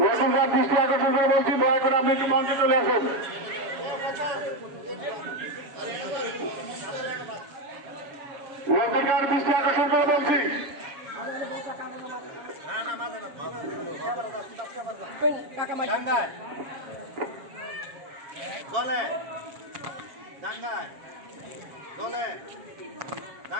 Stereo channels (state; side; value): late; left; 7.3 ms